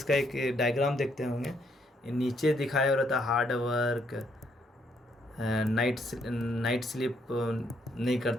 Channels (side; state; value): both; normal; correlation 0.72